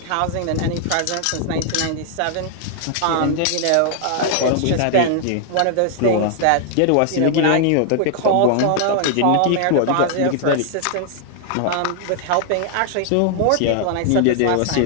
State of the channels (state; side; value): different; both; correlation 0.00